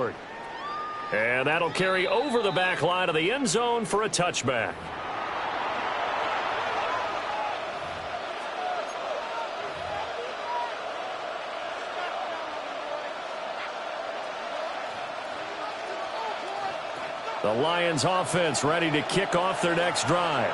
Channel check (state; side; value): identical; both; correlation 1.00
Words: And that'll carry over the back line of the end zone for a touchback. The Lions offense ready to kick off their next drive.